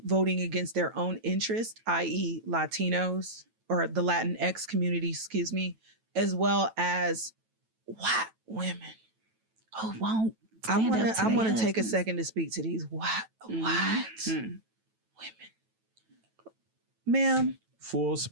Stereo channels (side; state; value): left; late; 9.1 ms